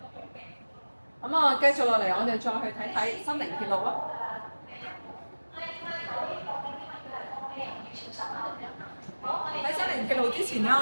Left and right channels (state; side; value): inverted; both; correlation -1.00